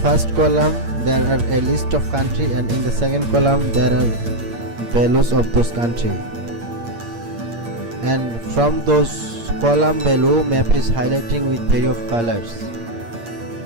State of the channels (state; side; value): late; left; 8.6 ms